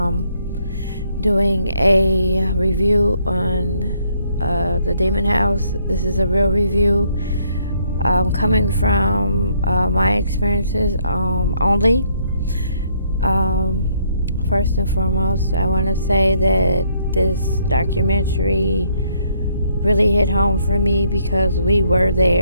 Doing a review on the Demon House. This is a real review. Coming from my experiences only. First and foremost, I want to say that this documentary really hit home for me because we were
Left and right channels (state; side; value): inverted; both; correlation -0.69